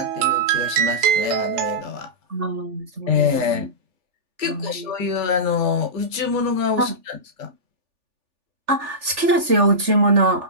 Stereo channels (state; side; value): late; left; 3.4 ms